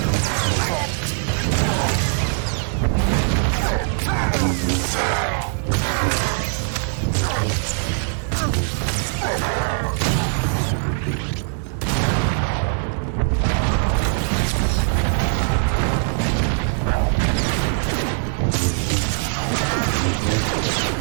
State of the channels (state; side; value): silent; left; 65 dB below the other